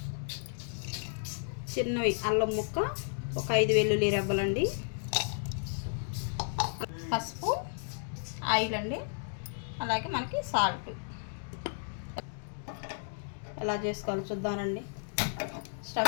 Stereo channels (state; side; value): silent; right; digital silence